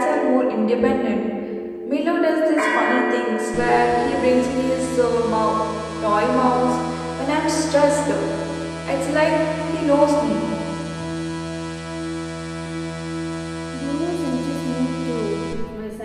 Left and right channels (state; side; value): identical; both; correlation 1.00